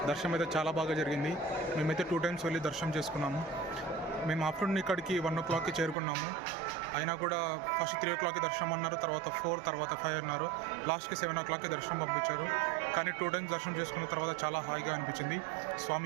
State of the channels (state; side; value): drops out; left; at 6.0 s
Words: దర్శనం అయితే చాలా బాగా జరిగింది. మేమైతే 2 times వెళ్ళి దర్శనం చేసుకున్నాము. మేము ఆఫ్టర్నూన్ ఇక్కడికి 1 o'clockకి చేరుకున్నాము. అయినా కూడా ఫస్ట్ 3 o'clockకి దర్శనం అన్నారు, తర్వాత 4, తర్వాత 5 అన్నారు. లాస్ట్కి 7 o'clockకి దర్శనం పంపించారు. కానీ 2 times దర్శనం చేసుకున్న తర్వాత చాలా హాయిగా అనిపించింది.